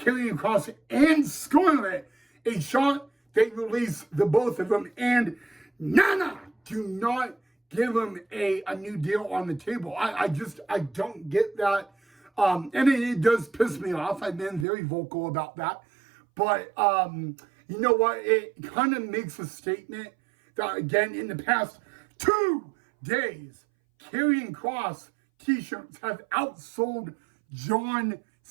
Kross and Scarlett a shot. They release the both of them, and Nana, do not give them a new deal on the table. I don't get that. And it does piss me off. I've been very vocal about that. But you know what? It kind of makes a statement that, again, in the past 2 days, Karrion Kross t-shirts have outsold John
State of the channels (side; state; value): left; drops out; at 14.7 s